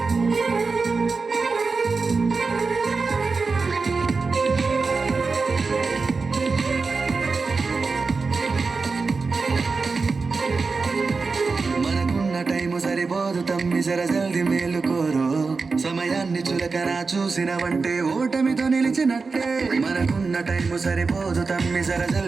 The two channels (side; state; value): left; quieter; 4.4 dB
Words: సరిపోదు తమ్మి జర జల్ది మేలుకోరు సమయాన్ని చులకనా చూసినవంటే ఓటమితో నిలిచినట్టే మనకున్న టైము సరిపోదు తమ్మి జర